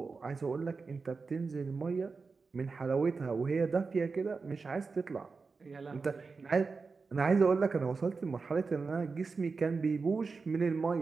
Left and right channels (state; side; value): quieter; left; 4.5 dB